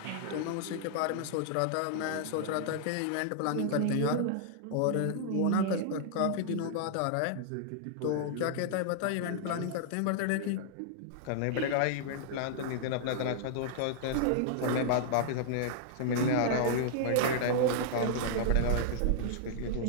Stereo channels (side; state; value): both; different; correlation -0.01